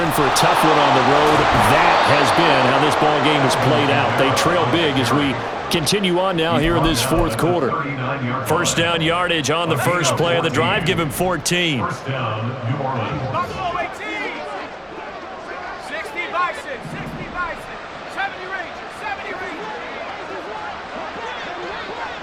in for a tough one on the road. That has been how this ball game has played out. They trail big as we continue on now here in this fourth quarter. First down yardage on the first play of the drive. Give him 14. First down, New Orleans.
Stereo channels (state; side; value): identical; both; correlation 1.00